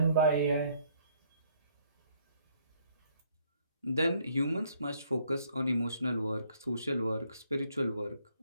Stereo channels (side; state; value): both; inverted; correlation -0.66